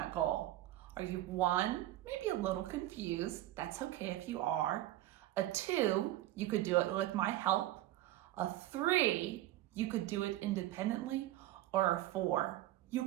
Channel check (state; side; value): quieter; left; 14.8 dB